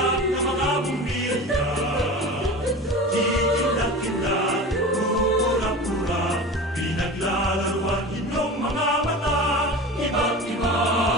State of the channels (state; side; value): normal; both; correlation 0.33